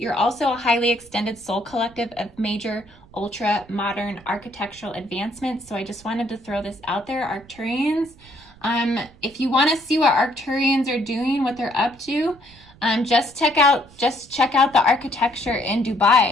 also a highly extended soul collective of major ultra-modern architectural advancements, so I just wanted to throw this out there, Arcturians. If you want to see what Arcturians are doing, what they're up to, just check out the architecture in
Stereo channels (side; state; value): right; noise; rumble, 25 dB below the sound